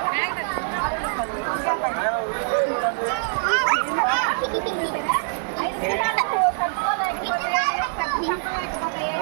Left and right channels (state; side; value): silent; left; 63 dB below the other